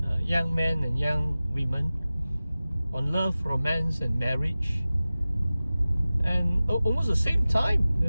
young men and young women, on love, romance and marriage. And almost the same time,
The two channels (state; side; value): inverted; both; correlation -0.97